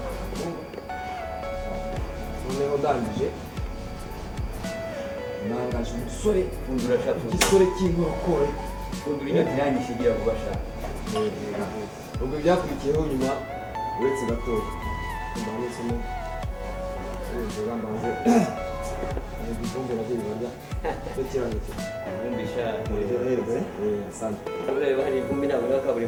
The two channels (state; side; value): identical; both; correlation 1.00